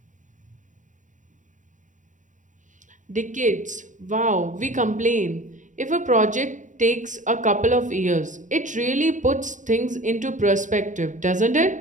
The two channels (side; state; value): left; late; 0.36 ms